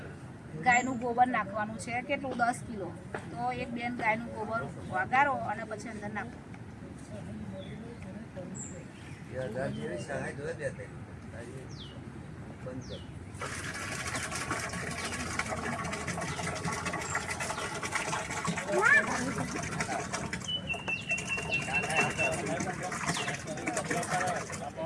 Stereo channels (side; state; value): both; identical; correlation 1.00